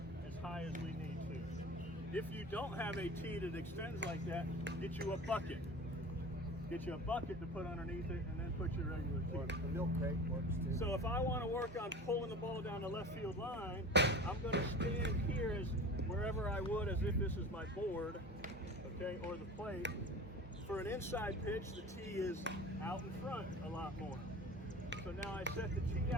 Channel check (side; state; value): both; normal; correlation 0.37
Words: as high as we need to. If you don't have a tee that extends like that, get you a bucket. Get you a bucket to put underneath it and then put your regular tee. The milk crate works too. So if I want to work on pulling the ball down the left field line, I'm going to stand here as wherever I would as if this is my board, okay, or the plate. For an inside pitch, the tee is out in front a lot more. So now I set the tee